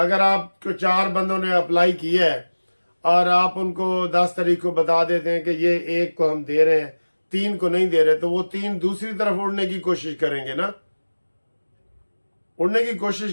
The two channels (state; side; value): inverted; both; correlation -1.00